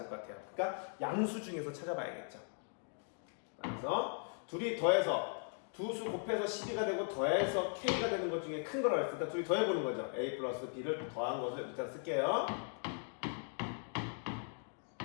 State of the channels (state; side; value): silent; right; 52 dB below the other